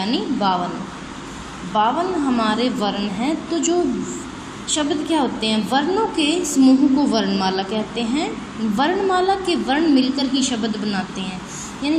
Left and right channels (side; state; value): both; identical; correlation 1.00